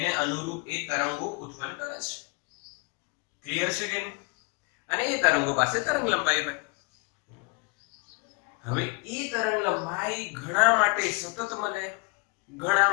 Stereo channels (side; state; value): right; quieter; 30.9 dB